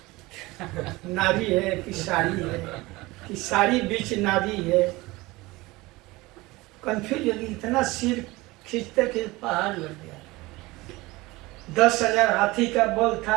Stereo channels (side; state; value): left; quieter; 21.1 dB